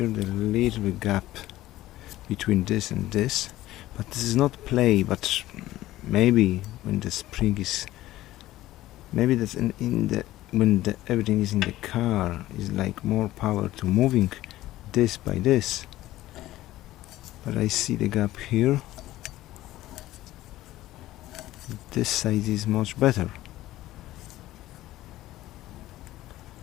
the little bit gap between this and this, but this is not play, but maybe when the spring is, maybe that's in the when everything is in the car, is like more power to moving this by this. But I see the gap here. This side is much better.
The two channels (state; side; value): quieter; right; 15.7 dB